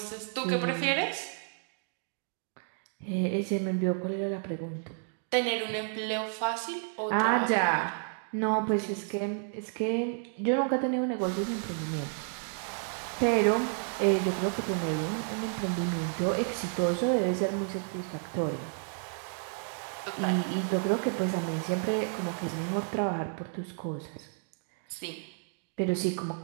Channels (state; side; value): silent; left; 57 dB below the other